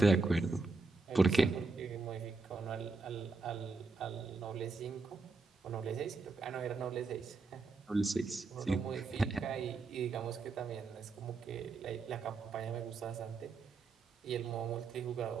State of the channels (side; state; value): left; quieter; 4.0 dB